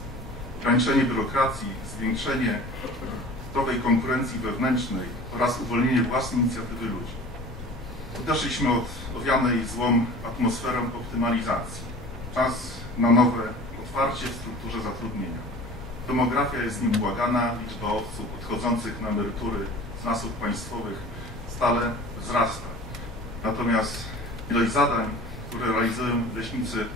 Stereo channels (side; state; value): both; normal; correlation 0.41